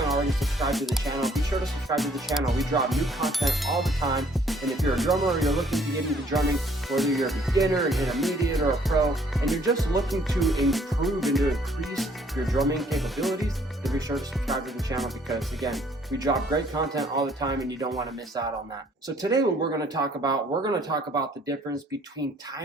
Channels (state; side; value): normal; both; correlation 0.61